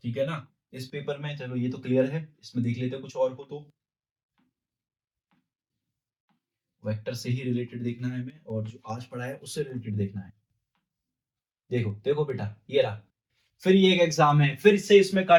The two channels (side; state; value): both; identical; correlation 1.00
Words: ठीक है ना? इस पेपर में चलो ये तो क्लियर है, इसमें देख लेते हैं कुछ और हो तो। वेक्टर से ही रिलेटेड देखना है हमें, और जो आज पढ़ा है उससे रिलेटेड देखना है। देखो देखो बेटा, ये रहा, फिर ये एक एग्जाम है, फिर से इसमें